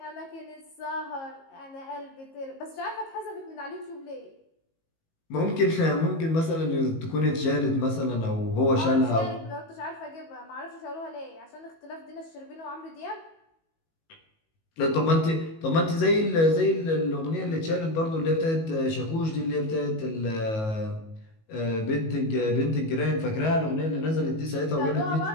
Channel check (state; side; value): late; right; 19 ms